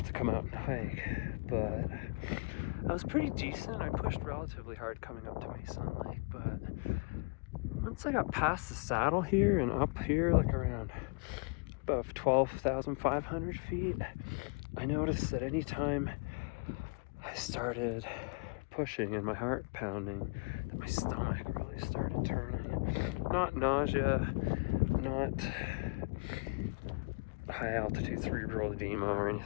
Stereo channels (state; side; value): quieter; right; 30.1 dB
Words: to come out and hike, but I was pretty decent. I pushed relatively hard coming up to Meysan Lake, but once I got past the saddle here and up here, like around above 12,500 feet, I noticed that anytime I started pushing and my heart pounding, that my stomach really started turning. Not nausea, not high altitude cerebral edema or